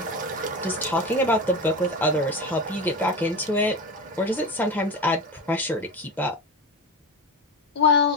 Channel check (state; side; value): normal; both; correlation 0.23